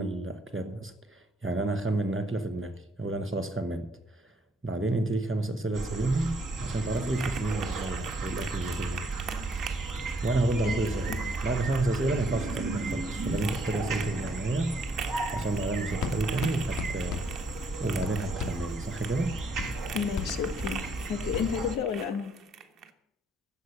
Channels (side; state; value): both; normal; correlation 0.68